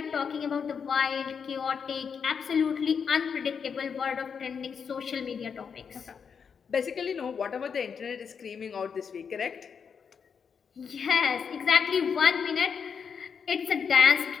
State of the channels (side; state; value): right; quieter; 6.5 dB